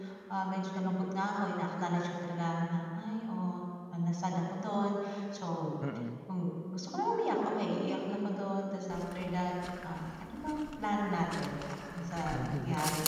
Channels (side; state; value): both; identical; correlation 1.00